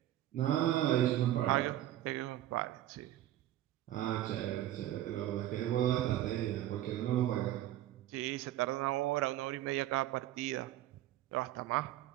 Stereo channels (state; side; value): quieter; left; 13.5 dB